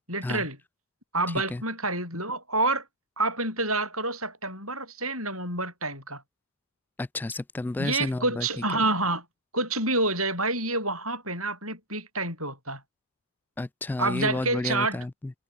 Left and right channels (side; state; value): both; normal; correlation 0.01